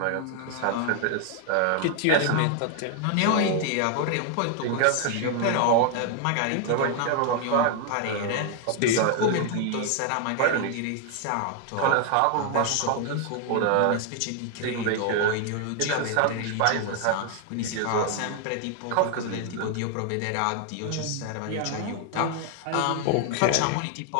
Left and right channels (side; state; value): both; different; correlation 0.00